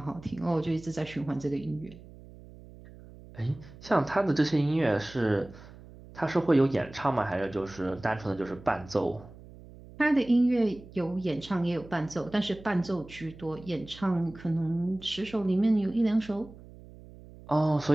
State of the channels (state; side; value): noise; right; hum, 19 dB below the sound